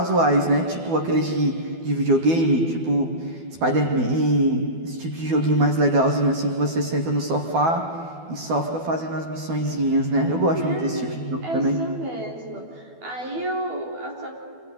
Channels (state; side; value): late; left; 12 ms